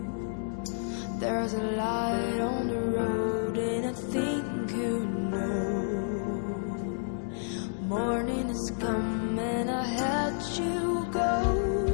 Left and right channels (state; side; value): silent; right; digital silence